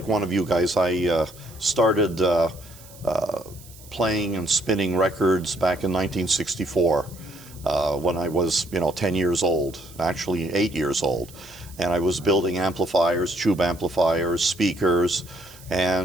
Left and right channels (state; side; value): noise; right; hiss, 21 dB below the sound